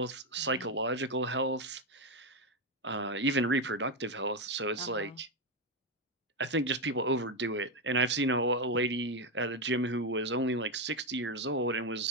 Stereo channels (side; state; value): both; normal; correlation 0.07